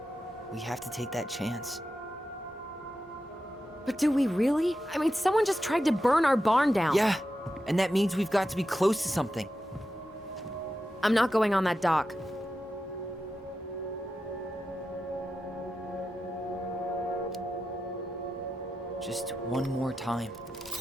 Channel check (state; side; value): normal; both; correlation 0.90